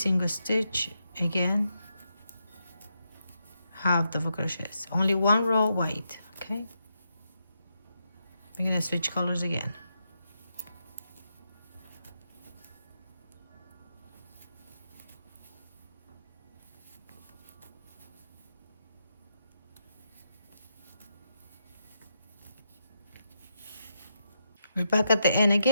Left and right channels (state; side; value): inverted; both; correlation -0.83